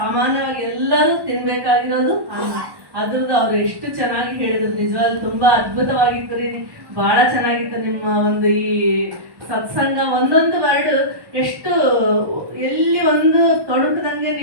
ಎಲ್ಲರೂ ತಿನ್ಬೇಕಾಗಿರೋದು ಅನ್ನ. ಅದ್ರದ್ದು ಅವ್ರು ಎಷ್ಟು ಚೆನ್ನಾಗಿ ಹೇಳಿದ್ರು. ನಿಜವಾಗ್ಲೂ ತುಂಬಾ ಅದ್ಭುತವಾಗಿತ್ತು ರೀ. ಬಹಳ ಚೆನ್ನಾಗಿತ್ತು ನಿಮ್ಮ ಒಂದು ಈ ಸತ್ಸಂಗ. ಒಂದೊಂದು ವರ್ಡ್ ಎಷ್ಟು ಎಲ್ಲಿ ಒಂದು ತೊಡಕದಂಗೆ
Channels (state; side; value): late; left; 1.1 ms